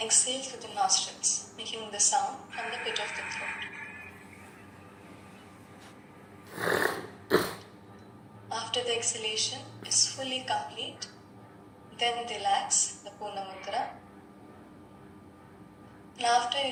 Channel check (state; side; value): identical; both; correlation 1.00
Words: exhale through the nostrils, making the sound from the pit of the throat. After the exhalation is fully complete, then relax the Purna Mudra. And after you